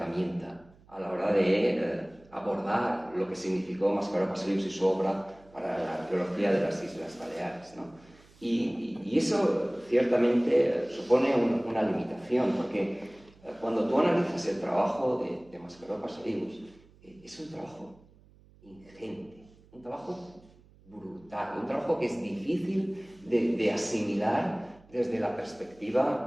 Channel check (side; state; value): right; noise; hum, 27 dB below the sound